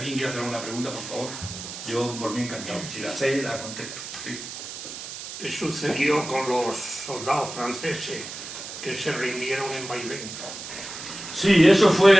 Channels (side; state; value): right; noise; hiss, 10 dB below the sound